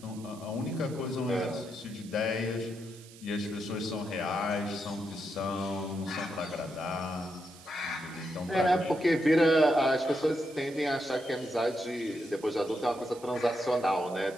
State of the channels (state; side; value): noise; right; hiss, 21 dB below the sound